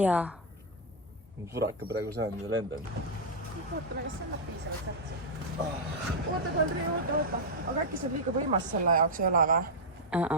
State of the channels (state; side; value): normal; both; correlation -0.04